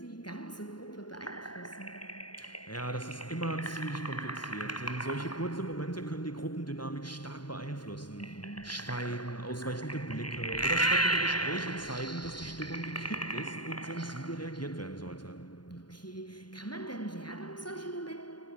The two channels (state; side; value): late; right; 0.71 ms